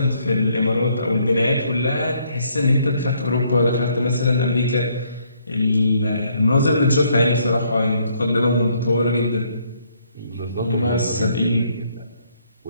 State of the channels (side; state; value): both; inverted; correlation -0.69